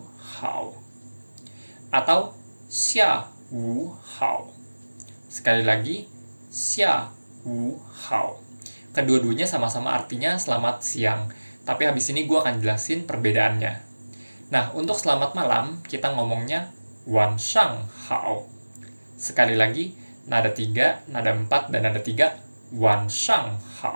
hao. Atau xia wu hao. Sekali lagi, xia wu hao. Kedua-duanya sama-sama artinya selamat siang, tapi habis ini gue akan jelasin perbedaannya. Nah, untuk selamat malam, kita ngomongnya wan shang hao. Sekali lagi, nada 3, nada 4, dan nada 3, wan shang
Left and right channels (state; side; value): inverted; both; correlation -1.00